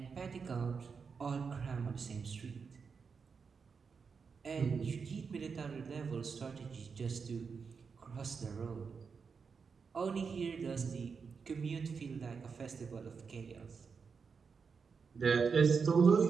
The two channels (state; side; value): quieter; left; 5.6 dB